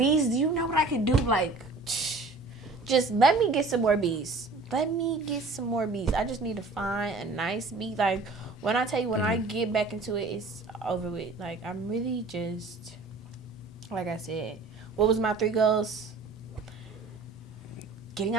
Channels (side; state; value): left; quieter; 3.6 dB